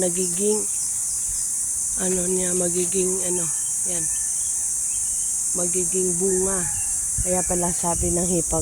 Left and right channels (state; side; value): identical; both; correlation 1.00